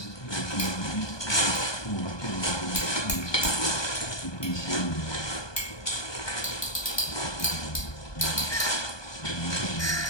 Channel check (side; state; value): right; late; 1.2 ms